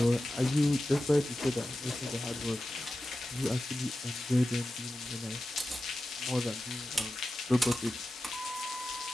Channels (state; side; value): normal; both; correlation 0.93